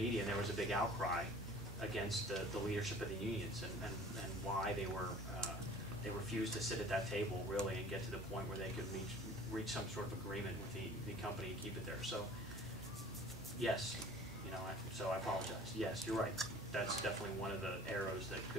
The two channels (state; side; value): normal; both; correlation 0.47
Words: and there was a big outcry against the leadership of the unions and why they refused to sit at that table really and get to the point where they could reach some sort of agreement with the company and keep it there. So you know, so I apologize. Yes, you're right. That's definitely one of the arrows that